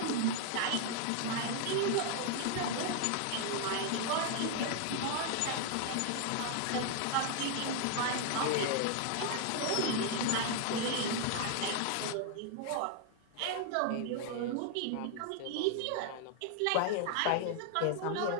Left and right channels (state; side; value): different; both; correlation 0.00